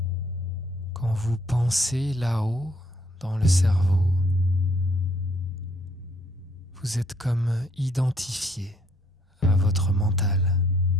Quand vous pensez là-haut dans le cerveau, vous êtes comme identifié à votre mental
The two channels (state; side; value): normal; both; correlation 0.66